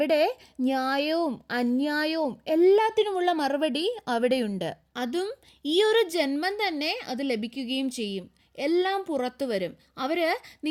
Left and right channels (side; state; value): both; identical; correlation 1.00